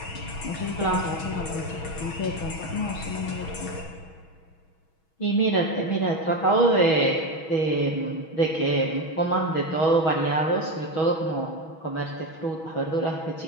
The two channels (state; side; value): late; right; 6.2 ms